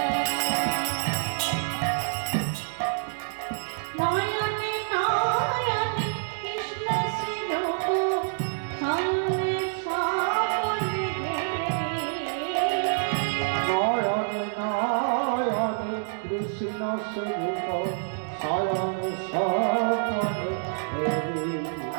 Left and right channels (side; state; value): left; silent; digital silence